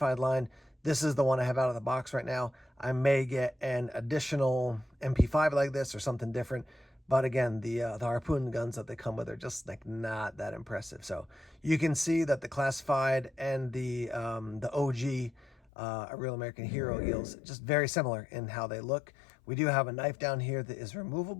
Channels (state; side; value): drops out; right; at 15.6 s